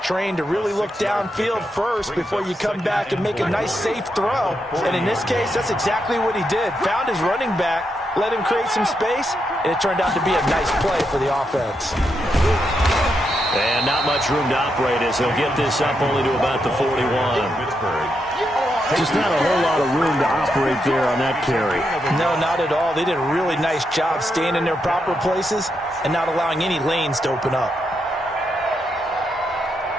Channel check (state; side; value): normal; both; correlation 0.82